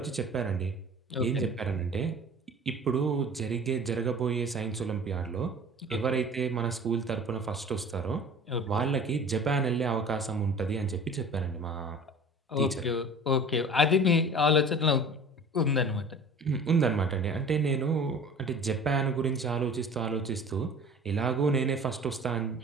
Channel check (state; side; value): normal; both; correlation 0.43